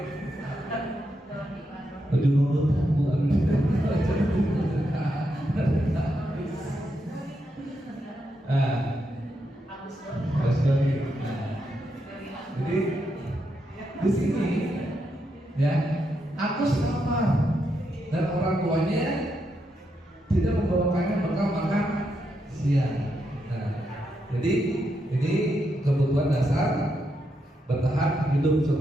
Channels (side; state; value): both; normal; correlation 0.82